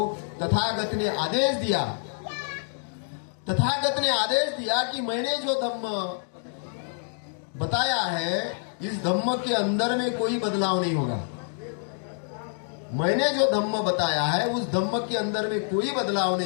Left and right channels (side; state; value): right; silent; digital silence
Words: तथागत ने आदेश दिया। तथागत ने आदेश दिया कि मैंने जो धम्म बताया है इस धम्म के अंदर में कोई बदलाव नहीं होगा। मैंने जो धम्म बताया है उस धम्म के अंदर में कोई बदलाव